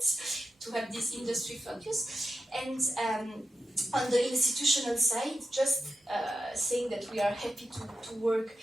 to have this industry focus. And on the institutional side, just saying that we are happy to work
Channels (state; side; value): normal; both; correlation 0.89